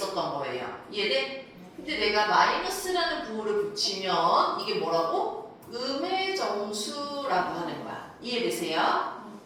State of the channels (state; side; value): identical; both; correlation 1.00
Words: 거예요. 이해돼? 근데 내가 마이너스라는 부호를 붙이면 이게 뭐라고? 음의 정수라고 하는 거야. 이해되세요?